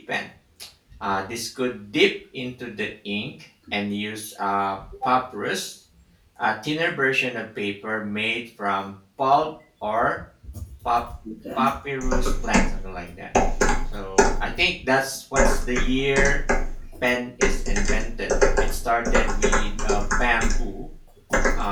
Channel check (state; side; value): identical; both; correlation 1.00